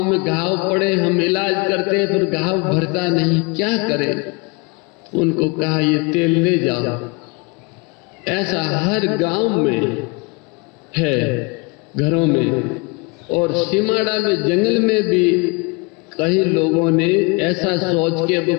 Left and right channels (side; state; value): right; quieter; 28.6 dB